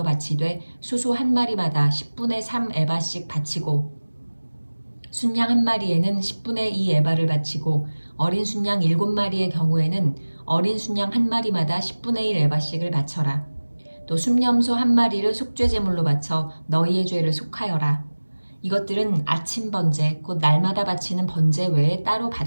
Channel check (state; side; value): inverted; both; correlation -1.00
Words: 바치되 수소 1마리마다 10분의 3 에바씩 바치고 순양 1마리에는 10분의 2 에바를 바치고 어린 순양 7마리의 경우에는 어린 순양 1마리마다 10분의 1 에바씩을 바쳐라. 또 순염소 1마리를 속죄 제물로 바쳐 너희의 죄를 속하여라. 이것들은 아침 번제 곧 날마다 바치는 번제 외에 따로